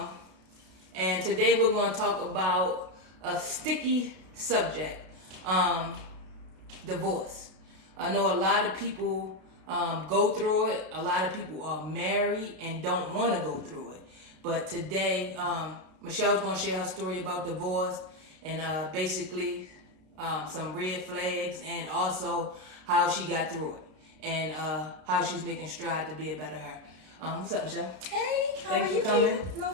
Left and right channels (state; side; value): late; left; 32 ms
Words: And today we're gonna talk about a sticky subject, divorce. I know a lot of people go through it. A lot of people are married and don't want to go through it. But today, Michelle's going to share her story about divorce and basically some red flags and also how she got through it and how she's making strides to be a better her. What's up, Michelle? Hey, how Thanks are you? for coming. No